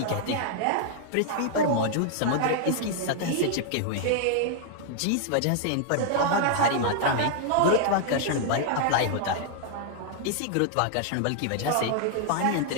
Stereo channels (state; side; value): different; both; correlation 0.00